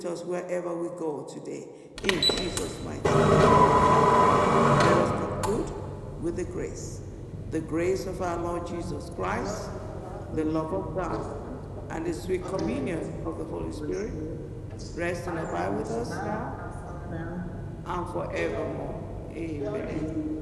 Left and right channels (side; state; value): both; identical; correlation 1.00